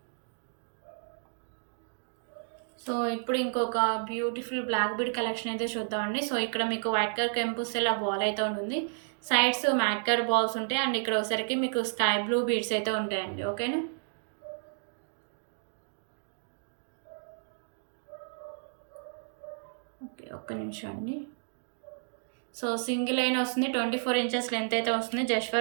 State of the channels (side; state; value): left; silent; digital silence